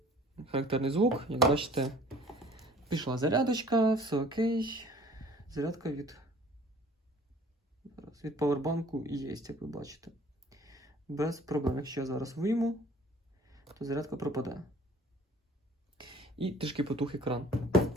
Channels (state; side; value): normal; both; correlation 0.51